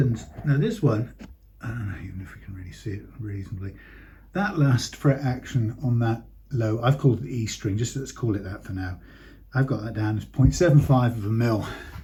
Now this one, I don't know even if we can really see it reasonably, that last fret action on that low, I've called it the E string, just let's call it that for now. I've got that down as 0.75 of a mil.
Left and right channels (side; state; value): both; identical; correlation 1.00